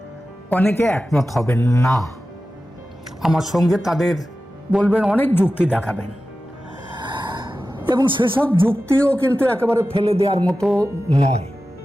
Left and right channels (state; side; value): normal; both; correlation 0.94